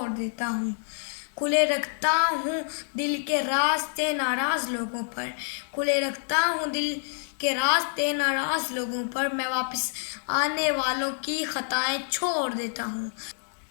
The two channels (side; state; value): right; silent; digital silence